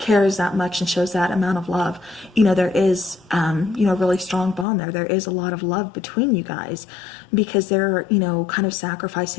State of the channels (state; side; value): drops out; right; at 4.7 s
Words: that much and shows that amount of love, there is, a really strong bond there. There is a lot of love between you guys, because they're, kind of